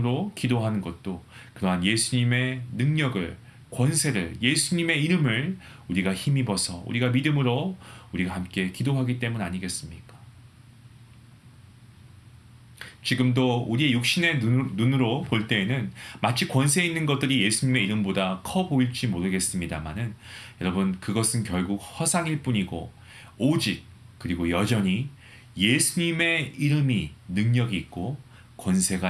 기도하는 것도 그러한 예수님의 능력을, 권세를, 예수님의 이름을 우리가 힘입어서 우리가 믿음으로 우리가 함께 기도하기 때문 아니겠습니까? 지금도 우리의 육신의 눈으로 볼 때에는 마치 권세 있는 것들이 예수님의 이름보다 커 보일지 모르겠습니다만은 여러분, 그것은 결국 허상일 뿐이고 오직 그리고 여전히 예수님의 이름이 능력이 있고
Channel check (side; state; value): both; identical; correlation 1.00